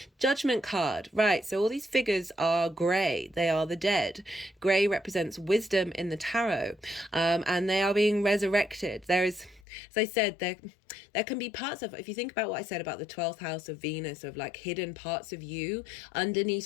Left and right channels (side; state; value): right; drops out; at 9.7 s